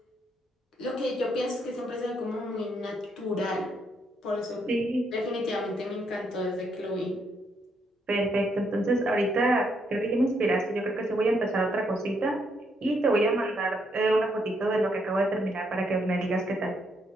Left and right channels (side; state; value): both; normal; correlation 0.75